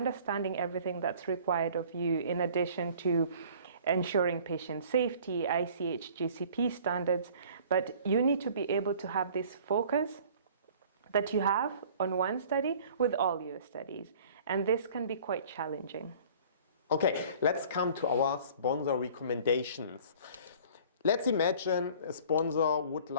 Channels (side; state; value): both; inverted; correlation -0.50